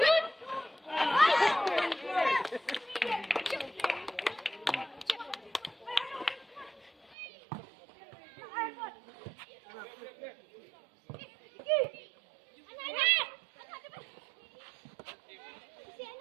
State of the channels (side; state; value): left; drops out; at 7.2 s